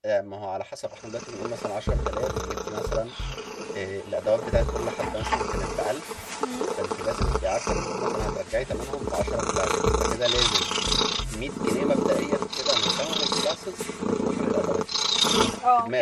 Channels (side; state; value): both; identical; correlation 1.00